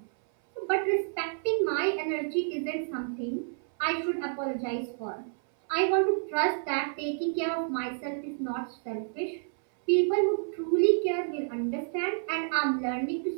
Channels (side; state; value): left; silent; 58 dB below the other